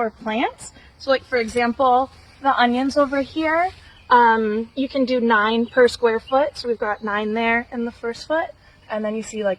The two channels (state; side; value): identical; both; correlation 1.00